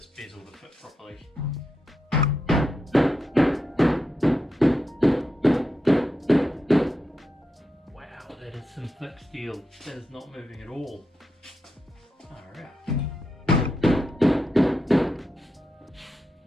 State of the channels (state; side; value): normal; both; correlation 0.86